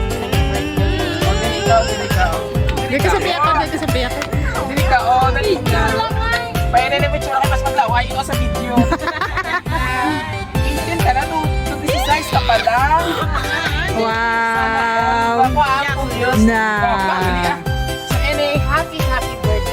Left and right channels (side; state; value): both; identical; correlation 1.00